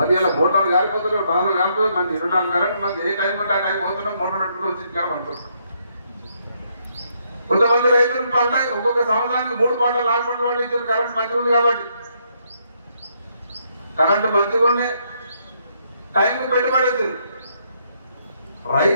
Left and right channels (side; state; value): both; inverted; correlation -0.73